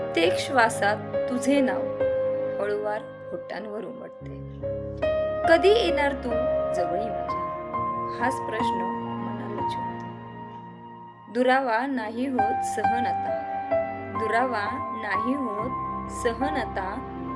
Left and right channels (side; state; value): both; identical; correlation 1.00